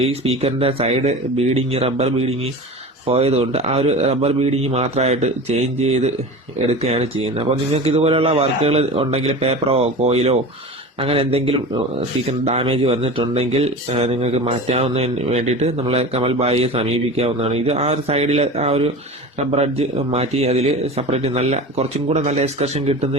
ഈ സ്പീക്കറിന്റെ സൈഡ് ബീഡിങ്, റബ്ബർ ബീഡിങ് പോയതുകൊണ്ട് ആ ഒരു റബ്ബർ ബീഡിങ് മാത്രമായിട്ട് ചേഞ്ച് ചെയ്ത് എടുക്കുകയാണ് ചെയ്യുന്നത്. അപ്പോൾ നിങ്ങൾക്ക് ഇതുപോലെയുള്ള വർക്കുകൾ ഉണ്ടെങ്കിൽ, പേപ്പറോ കോയിലോ അങ്ങനെ എന്തെങ്കിലും സ്പീക്കർ ഡാമേജ് വന്നിട്ടുണ്ടെങ്കിൽ നിങ്ങൾക്ക് മാറ്റാവുന്നതിന് വേണ്ടിയിട്ട് നമ്മളെ കമൽ ബായിയെ സമീപിക്കാവുന്നതാണ്. ഇത് ആ ഒരു സൈഡിലെ ആ ഒരു റബ്ബർ അഡ്ജ് മാറ്റി അതിൽ സെപ്പറേറ്റ് കുറച്ചും കൂടെ നല്ല എക്സ്കർഷൻ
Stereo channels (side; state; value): both; normal; correlation 0.32